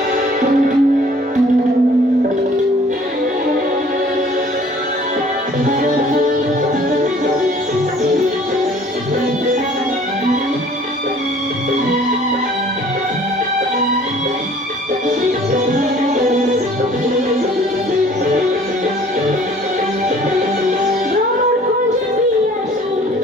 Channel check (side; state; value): both; normal; correlation 0.53